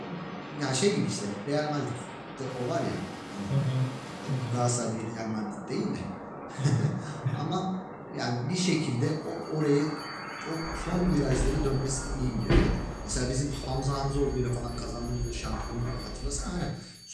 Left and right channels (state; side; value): identical; both; correlation 1.00